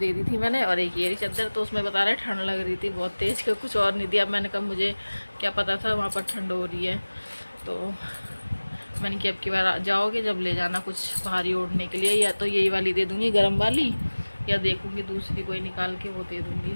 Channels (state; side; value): inverted; both; correlation -1.00